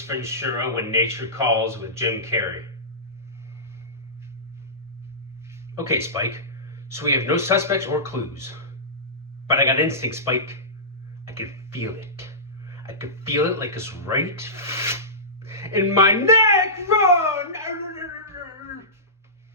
Ventura: When Nature Calls with Jim Carrey. Okay, Spike. So we have no suspects or clues. But I got instinct, Spike. I can feel it. I can feel it like it's right in my neck. Run!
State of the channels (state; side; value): normal; both; correlation -0.20